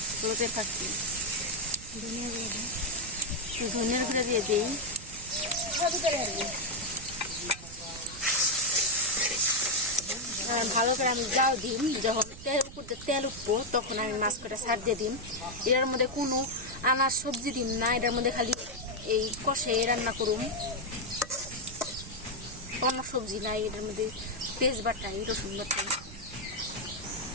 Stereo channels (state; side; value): noise; right; rumble, 16 dB below the sound